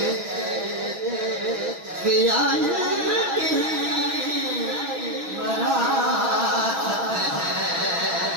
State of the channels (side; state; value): left; late; 6.0 ms